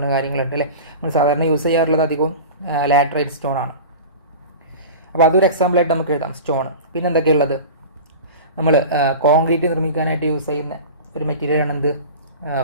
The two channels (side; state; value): both; inverted; correlation -0.33